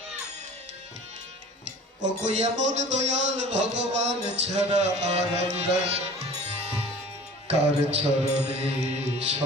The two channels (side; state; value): both; normal; correlation 0.43